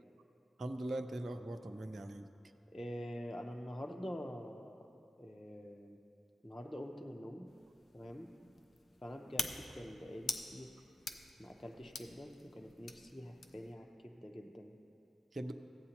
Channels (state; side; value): normal; both; correlation 0.92